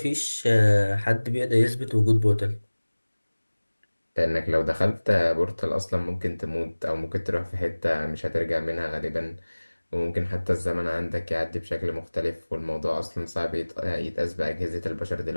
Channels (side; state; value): both; inverted; correlation -1.00